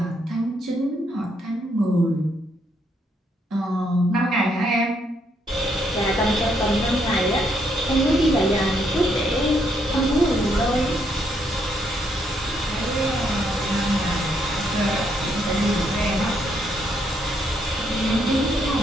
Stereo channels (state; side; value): normal; both; correlation 0.74